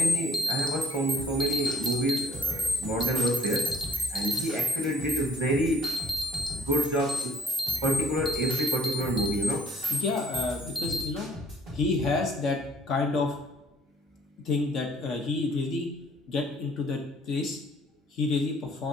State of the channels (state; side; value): normal; both; correlation 0.61